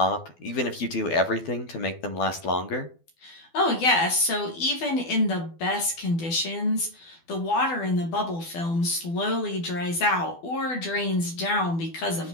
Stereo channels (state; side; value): late; right; 12 ms